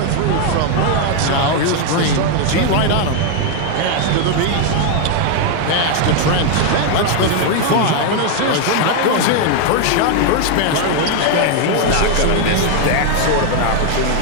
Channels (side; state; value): both; different; correlation 0.01